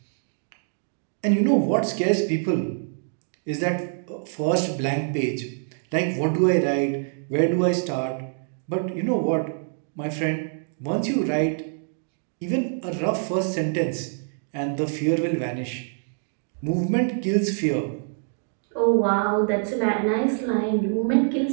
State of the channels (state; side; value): silent; left; digital silence